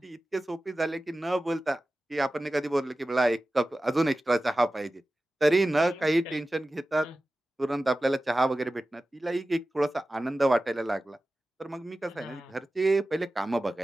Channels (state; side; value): normal; both; correlation 0.95